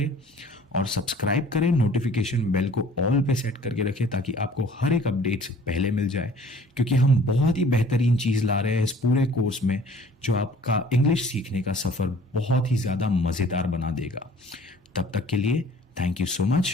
और सब्सक्राइब करें। नोटिफिकेशन बेल को ऑल पे सेट करके रखें ताकि आपको हर एक अपडेट पहले मिल जाए, क्योंकि हम बहुत ही बेहतरीन चीज ला रहे हैं इस पूरे कोर्स में जो आपका इंग्लिश सीखने का सफर बहुत ही ज्यादा मजेदार बना देगा। तब तक के लिए थैंक यू सो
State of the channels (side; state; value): both; normal; correlation 0.52